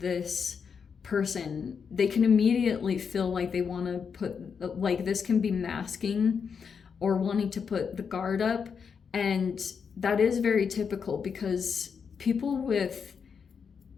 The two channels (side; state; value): right; quieter; 6.3 dB